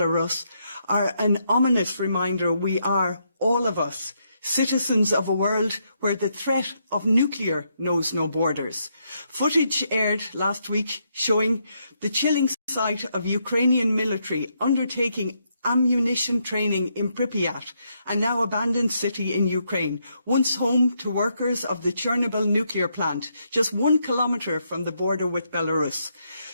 are an ominous reminder we are, all of us, citizens of a world where the threat of nuclear knows no borders. Footage aired last week showing the chilling sight of Ukrainian military undertaking ammunition training in Pripyat, a now abandoned city in Ukraine, once home to workers of the Chernobyl nuclear plant, just 1 kilometre from the border with Belarus.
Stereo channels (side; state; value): both; inverted; correlation -0.78